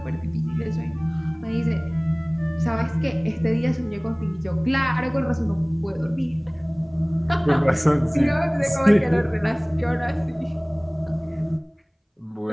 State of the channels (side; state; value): both; identical; correlation 1.00